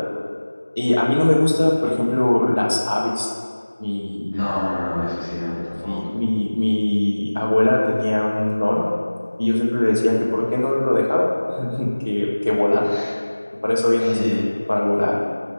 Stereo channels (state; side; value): inverted; both; correlation -1.00